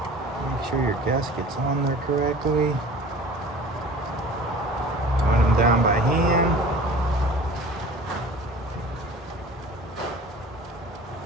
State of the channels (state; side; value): normal; both; correlation 0.43